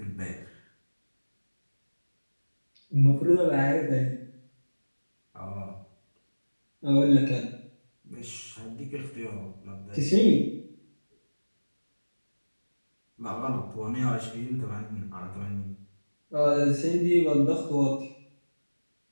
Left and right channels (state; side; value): inverted; both; correlation -1.00